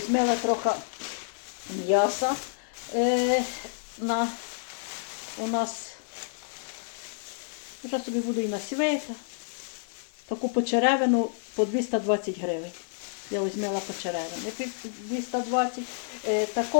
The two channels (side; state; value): right; silent; 59 dB below the other